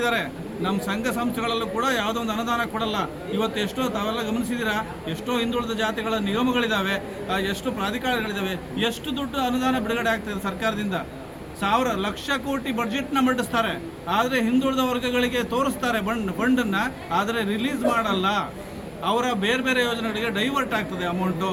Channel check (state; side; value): identical; both; correlation 1.00